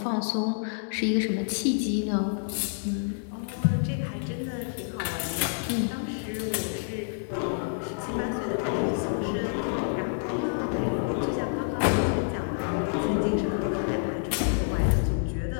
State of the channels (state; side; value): silent; right; 59 dB below the other